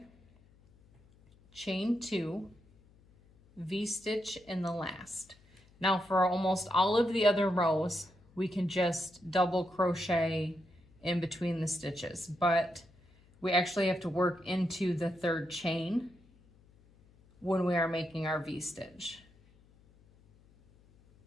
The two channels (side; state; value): left; noise; hum, 29 dB below the sound